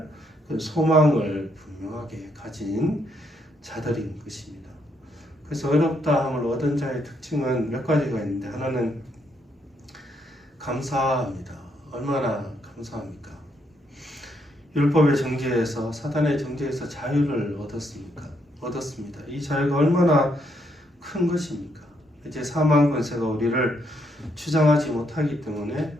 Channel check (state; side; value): normal; both; correlation 0.75